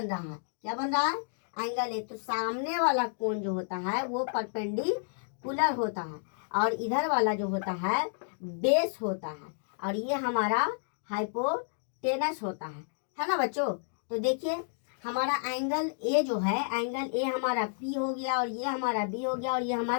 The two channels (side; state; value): right; silent; digital silence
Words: रहा है। क्या बन रहा है? Angle A. तो सामने वाला कोण जो होता है वो परपेंडिकुलर होता है और इधर वाला जो होता है बेस होता है, और ये हमारा हाइपोटेनस होता है ना बच्चों? तो देखिए हमारा एंगल ए जो है, एंगल ए हमारा P हो गया, और ये हमारा B हो गया, और ये